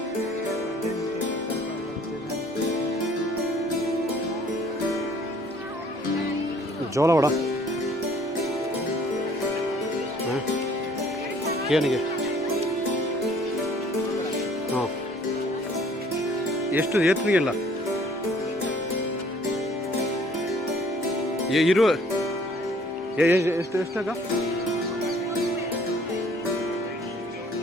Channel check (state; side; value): normal; both; correlation 0.57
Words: ಜೋಳ ವಡ ಏನಿಗೆ ಹಾಂ ಎಷ್ಟು ಏತ್ರಿಗೆಲ್ಲ ಇರುವ ಎಷ್ಟು ಎಷ್ಟಾಗ